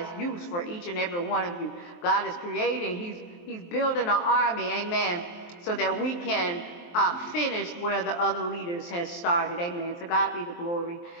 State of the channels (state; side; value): late; right; 23 ms